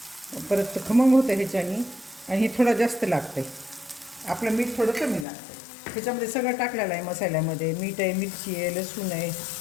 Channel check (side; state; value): right; drops out; at 5.2 s